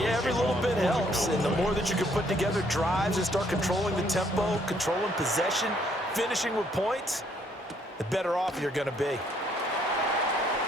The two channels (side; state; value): both; normal; correlation 0.67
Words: every little bit helps. And the more that you can put together drives and start controlling the tempo, controlling possession, finishing with points, the better off you're going to be.